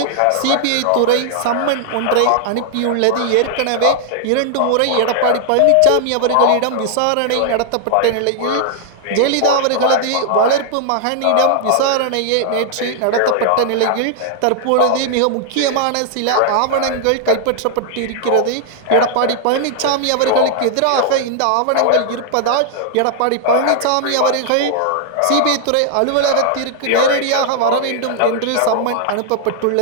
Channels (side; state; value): both; different; correlation -0.01